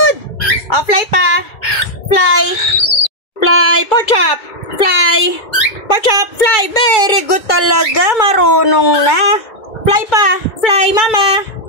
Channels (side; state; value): right; late; 2.3 ms